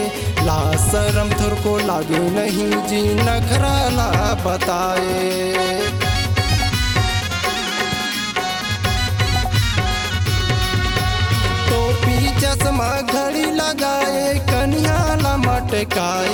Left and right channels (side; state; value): both; identical; correlation 1.00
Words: ला शरम थोर को लागे नहीं जी नखरा ला बताए। टोपी चश्मा घड़ी लगाए कन्या